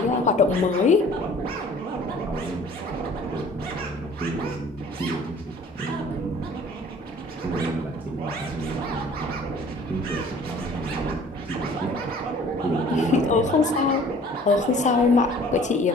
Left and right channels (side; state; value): both; normal; correlation 0.51